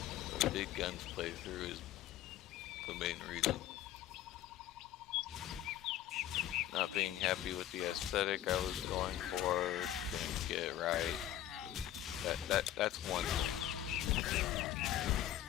the Big Guns playthrough is the main reason. Not being happy with the aesthetic I was going for, didn't get it right. That's one thing.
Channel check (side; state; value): right; quieter; 12.3 dB